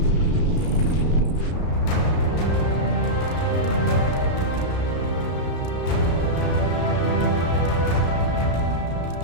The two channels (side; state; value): right; late; 33 ms